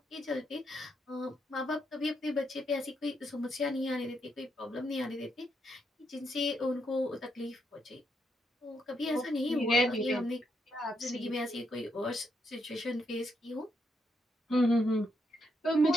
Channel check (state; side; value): normal; both; correlation 0.79